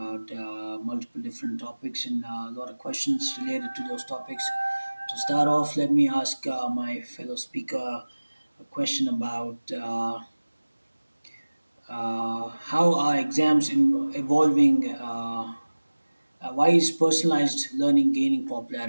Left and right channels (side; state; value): both; inverted; correlation -1.00